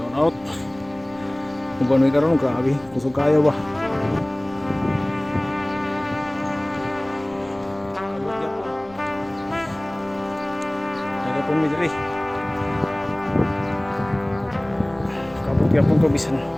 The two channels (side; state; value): left; noise; rumble, 25 dB below the sound